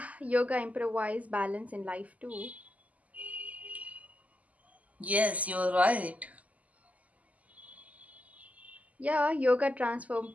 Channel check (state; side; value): late; left; 0.074 ms